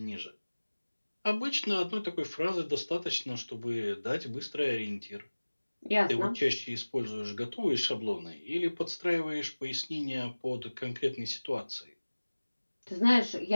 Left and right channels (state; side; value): inverted; both; correlation -1.00